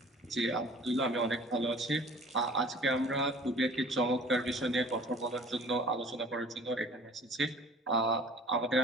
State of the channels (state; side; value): normal; both; correlation 0.48